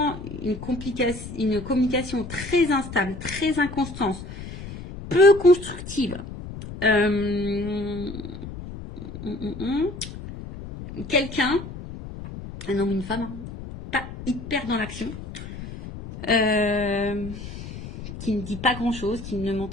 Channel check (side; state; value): left; noise; rumble, 11 dB below the sound